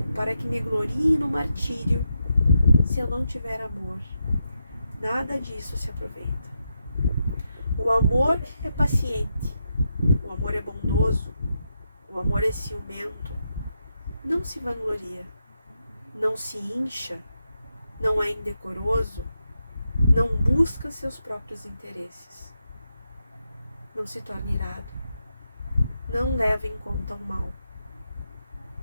para que me glorie no martírio, se eu não tiver amor, nada disso se aproveita. O amor é paciente, o amor é bondoso, o amor é ciumento, não se vangloria, não se incha, não é indecoroso, não busca seus próprios interesses, não se torna irado, não leva em conta o mal,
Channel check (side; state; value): both; inverted; correlation -0.84